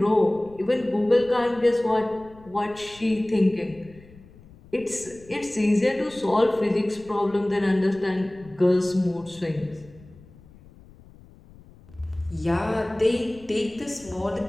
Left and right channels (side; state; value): left; noise; rumble, 23 dB below the sound